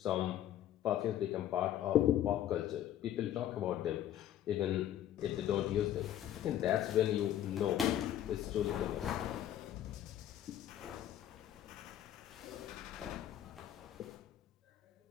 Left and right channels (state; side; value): quieter; right; 11.7 dB